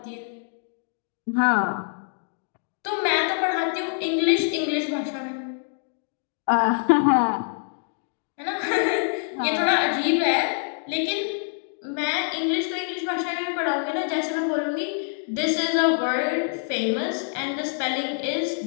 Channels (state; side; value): silent; right; 61 dB below the other